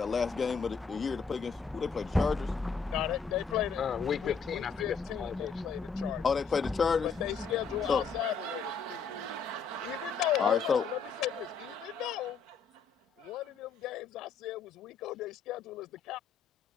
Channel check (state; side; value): quieter; right; 5.6 dB